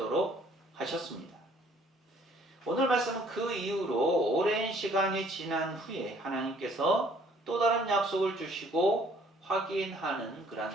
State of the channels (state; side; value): normal; both; correlation 0.59